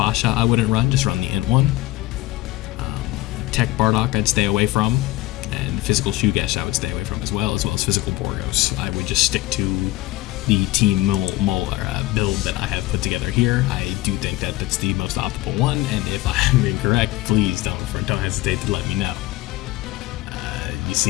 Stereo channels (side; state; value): right; quieter; 17.9 dB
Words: I wouldn't run, just run the Int one. Tech Bardock I'd stay away from, and Physical Shugesh I would stay away from as well as Physical Borgos. I would just stick to the Team build that I have put together here. I do think that that's the most optimal one, and if I'm incorrect, please don't hesitate to let me know. You